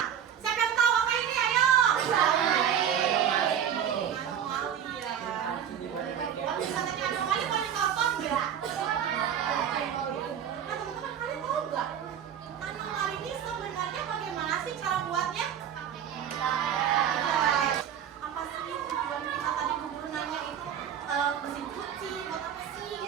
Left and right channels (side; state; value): left; quieter; 9.0 dB